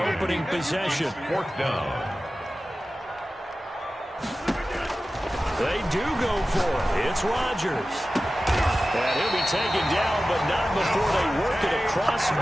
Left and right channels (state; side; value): normal; both; correlation 0.95